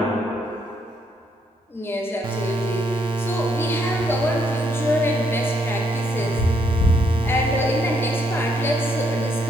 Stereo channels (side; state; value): both; normal; correlation 0.73